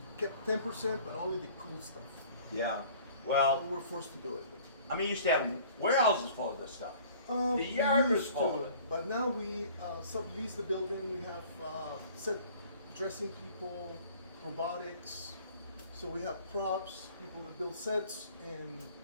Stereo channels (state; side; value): inverted; both; correlation -0.51